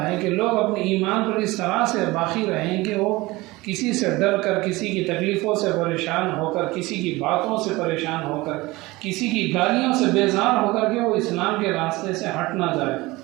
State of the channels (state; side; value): quieter; left; 21.0 dB